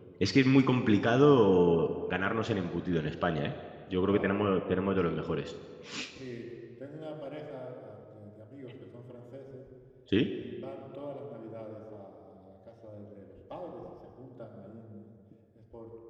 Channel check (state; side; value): identical; both; correlation 1.00